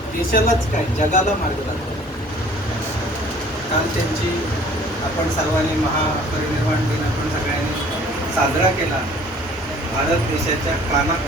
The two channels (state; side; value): normal; both; correlation 0.52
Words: देशालाच काय, जगाला मार्ग दाखवला. काल त्यांची आपण सर्वांनी महापरिनिर्वाण दिन आपण सगळ्यांनी साजरा केला. भारत देशाच्या